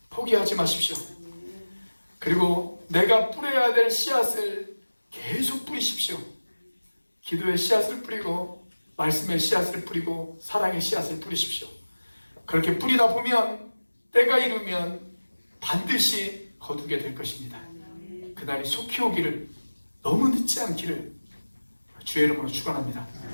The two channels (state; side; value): inverted; both; correlation -1.00